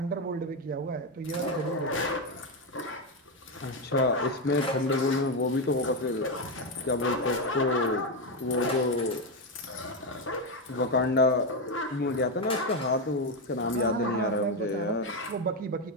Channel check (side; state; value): both; normal; correlation 0.08